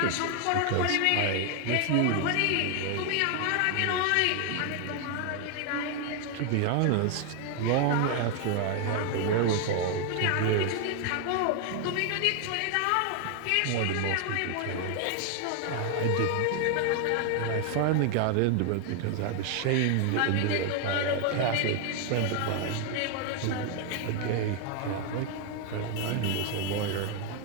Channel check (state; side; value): different; both; correlation 0.00